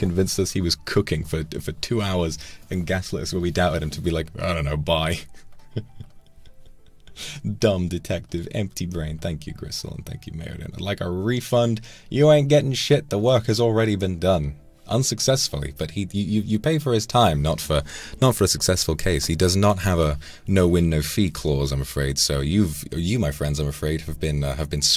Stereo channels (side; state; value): both; identical; correlation 1.00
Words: us he was cooking for 2 hours and gaslit us when we doubted him to be like, I don't know, bye. Dumb detective, empty brain. Thank you, Gristle, and thank you, Meriden. I'd like a refund. You ain't getting shit. The work has already been done. Unsuccessfully, but you pay for his time, not for a successful case. He does not have a no win no fee clause, I'm afraid. So you my friends, I'm afraid, have been